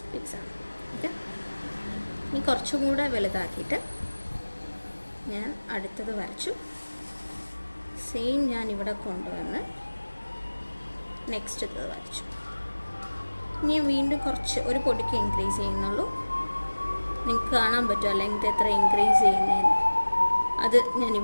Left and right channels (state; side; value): inverted; both; correlation -1.00